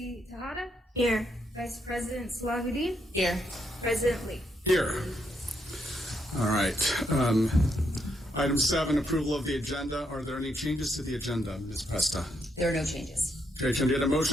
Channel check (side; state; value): both; normal; correlation 0.77